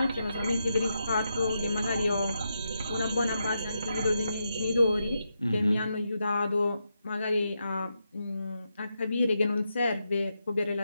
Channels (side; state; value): both; inverted; correlation -0.85